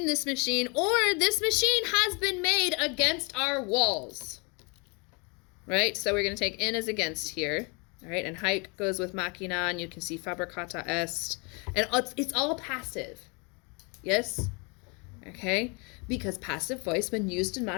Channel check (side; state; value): right; quieter; 31.9 dB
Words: this machine, or this machine has been made against our walls. Right? So we're going to take in as against here. All right? And haec goes with machina, and you can see fabricata est. And it's all passive. Yes? Okay? Because passive voice, when used in